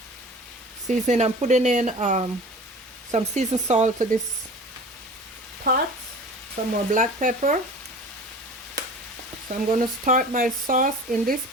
seasoning. I'm putting in some seasoned salt to this pot, some more black pepper. So I'm going to start my sauce in this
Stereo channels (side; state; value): both; normal; correlation 0.40